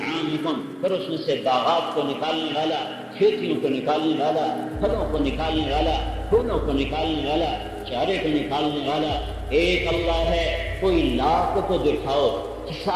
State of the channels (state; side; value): identical; both; correlation 1.00